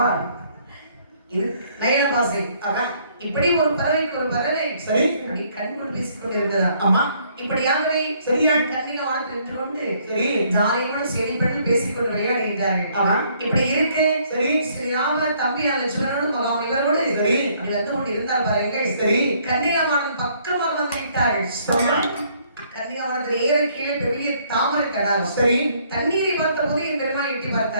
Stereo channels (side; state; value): both; inverted; correlation -0.65